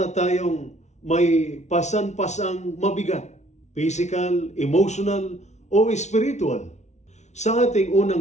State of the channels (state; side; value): late; right; 0.33 ms